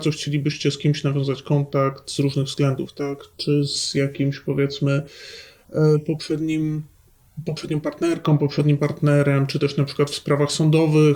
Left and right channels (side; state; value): both; identical; correlation 1.00